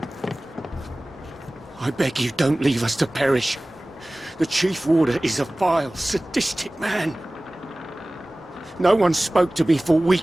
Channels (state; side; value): normal; both; correlation 0.98